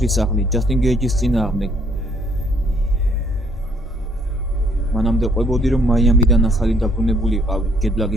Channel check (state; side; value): normal; both; correlation 0.65